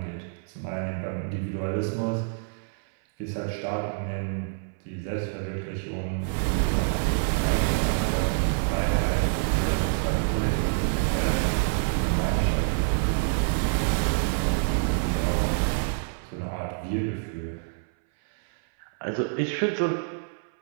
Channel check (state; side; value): silent; left; 60 dB below the other